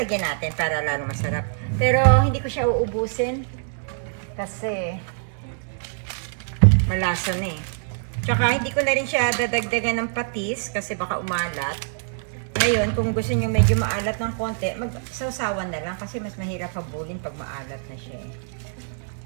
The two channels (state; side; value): silent; left; 59 dB below the other